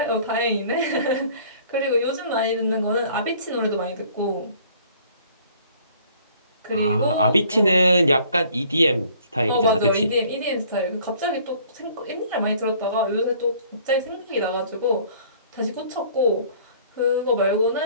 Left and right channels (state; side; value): inverted; both; correlation -0.55